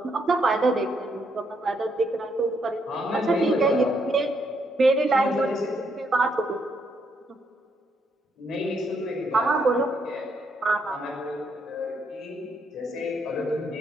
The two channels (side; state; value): both; normal; correlation 0.75